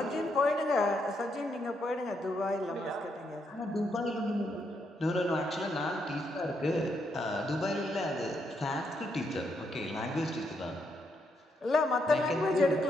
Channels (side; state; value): both; normal; correlation 0.78